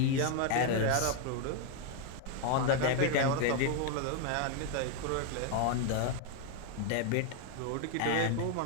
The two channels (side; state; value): both; different; correlation 0.01